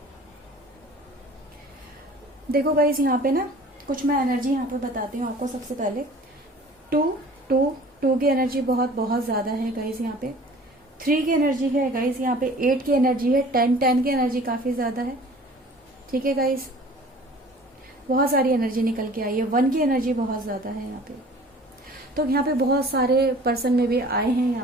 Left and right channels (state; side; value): normal; both; correlation 0.47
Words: देखो गाइस, यहाँ पे ना कुछ मैं एनर्जी यहाँ पे बताती हूँ आपको। सबसे पहले टू की एनर्जी बहुत ज्यादा है गाइस यहाँ पे। 3 की एनर्जी है गाइस यहाँ पे। 8 की एनर्जी है। 10 की एनर्जी काफी ज्यादा है। ठीक है गाइस, बहुत सारी एनर्जी निकल के आई है। 1 की एनर्जी बहुत ज्यादा है यहाँ पे। तो यहाँ पे बहुत सारे पर्सन में भी आए हैं